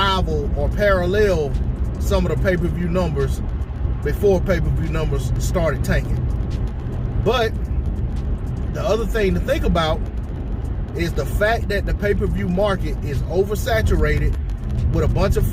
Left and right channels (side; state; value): both; identical; correlation 1.00